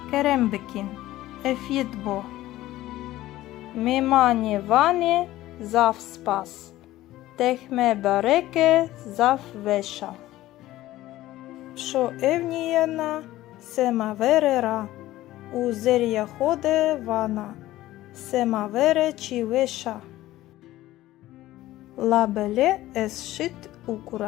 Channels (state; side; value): quieter; right; 15.7 dB